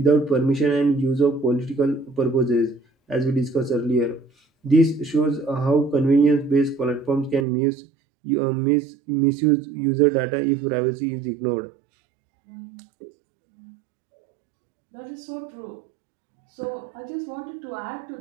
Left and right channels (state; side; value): drops out; left; at 7.5 s